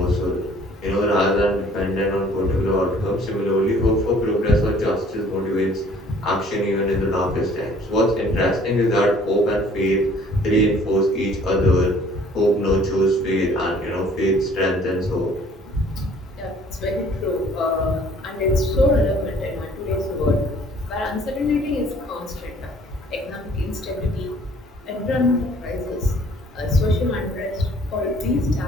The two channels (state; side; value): normal; both; correlation 0.56